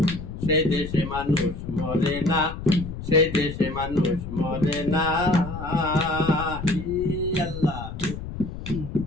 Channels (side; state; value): left; noise; rumble, 9 dB below the sound